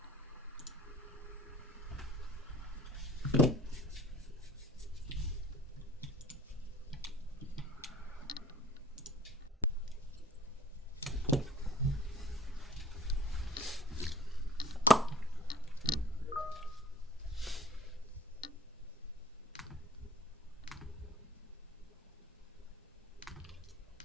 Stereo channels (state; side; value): normal; both; correlation 0.50